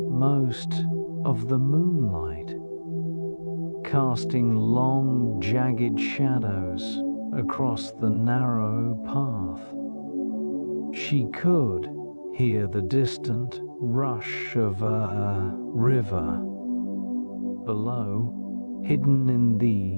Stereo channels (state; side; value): inverted; both; correlation -1.00